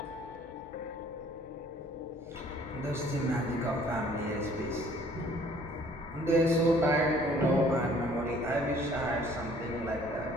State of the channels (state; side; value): normal; both; correlation 0.57